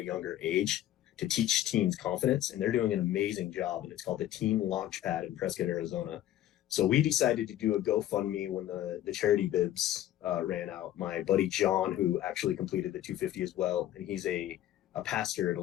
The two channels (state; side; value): quieter; right; 12.9 dB